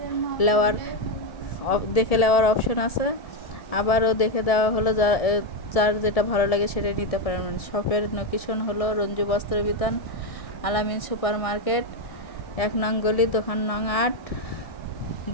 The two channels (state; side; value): late; right; 1.7 ms